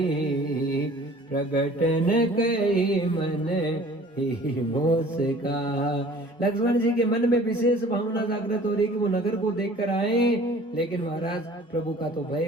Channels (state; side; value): normal; both; correlation 0.49